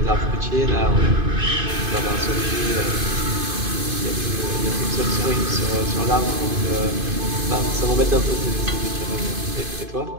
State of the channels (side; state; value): left; late; 2.5 ms